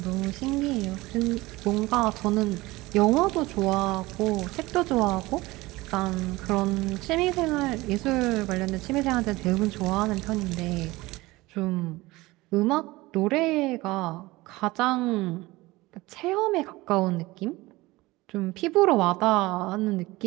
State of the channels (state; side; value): quieter; left; 20.4 dB